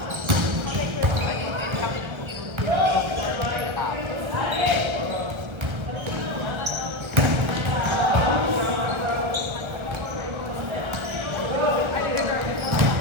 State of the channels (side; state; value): left; late; 1.3 ms